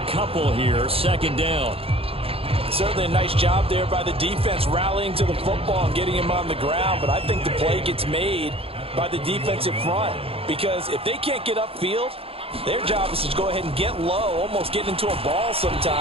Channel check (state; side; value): late; left; 0.27 ms